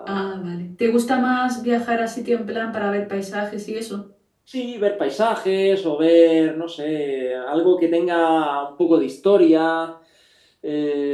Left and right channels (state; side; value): identical; both; correlation 1.00